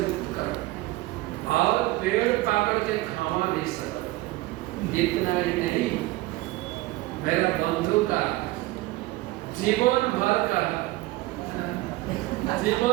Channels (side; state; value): left; quieter; 19.1 dB